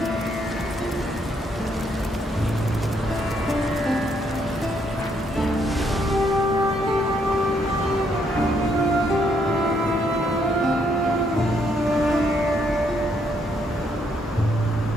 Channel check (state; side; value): normal; both; correlation 0.72